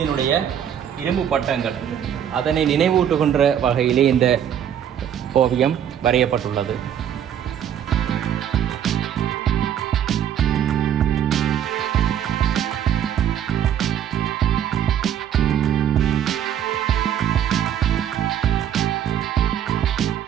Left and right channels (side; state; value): left; quieter; 9.6 dB